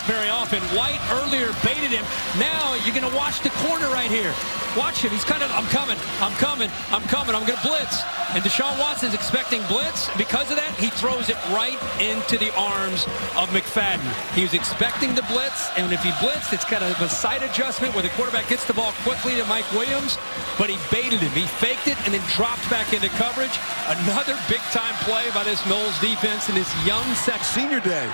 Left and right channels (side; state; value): both; inverted; correlation -1.00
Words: very often. White earlier baited him. Now you're going to watch the corner right here. Watch him. He's kind of, I'm coming, I'm going to blitz. And Deshaun Watson's expecting blitz. Because of that, he throws it right into the arms of McFadden. He was expecting the blitz, and if he blitzed, it's kind of a side adjustment where the quarterback gets the ball quickly to Mike Williams, but he baited him. He faked it and then dropped back into coverage. Another big-time play by this Noles defense in this young Senior day.